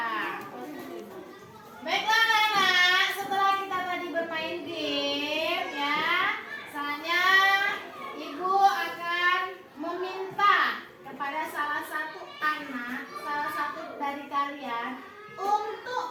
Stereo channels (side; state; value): both; identical; correlation 1.00